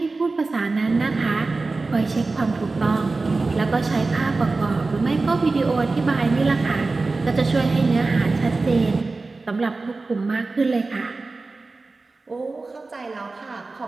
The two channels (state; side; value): quieter; left; 3.6 dB